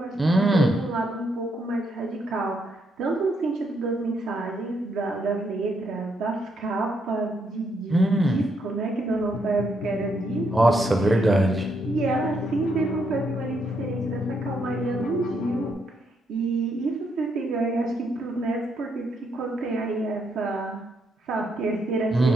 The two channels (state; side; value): normal; both; correlation 0.76